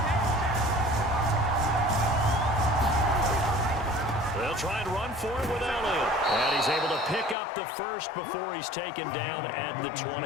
They'll try and run for it with Elliott. And he's able to pick up the first before he's taken down at the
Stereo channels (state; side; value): drops out; right; at 7.4 s